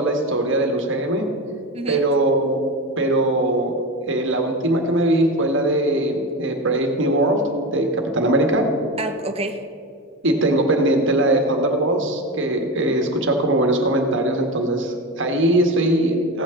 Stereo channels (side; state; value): both; normal; correlation 0.23